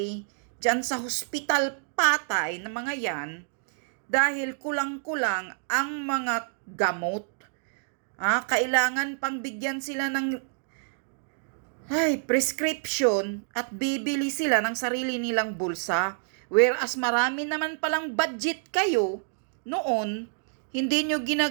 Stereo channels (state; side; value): silent; left; digital silence